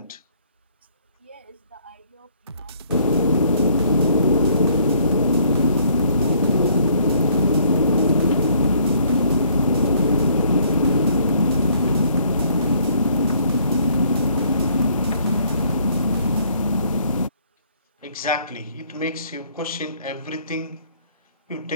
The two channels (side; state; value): both; inverted; correlation -0.63